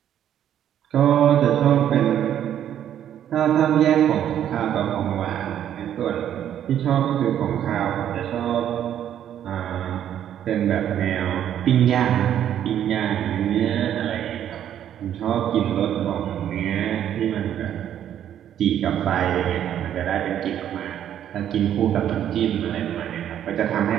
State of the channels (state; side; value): quieter; left; 10.4 dB